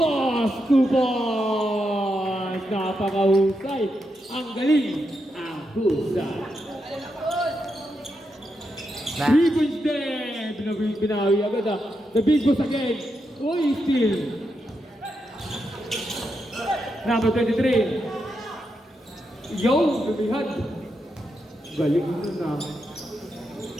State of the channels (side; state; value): both; normal; correlation 0.84